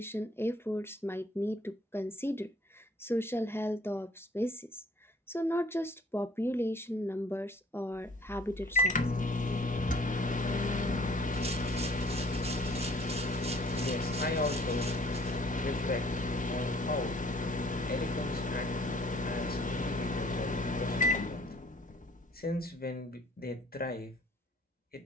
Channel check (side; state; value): both; normal; correlation 0.57